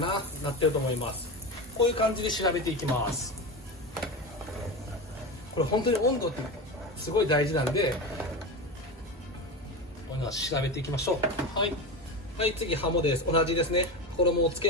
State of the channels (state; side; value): normal; both; correlation 0.22